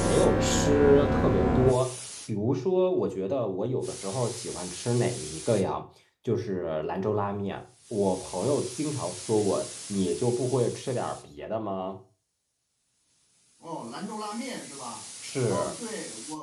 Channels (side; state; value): both; identical; correlation 1.00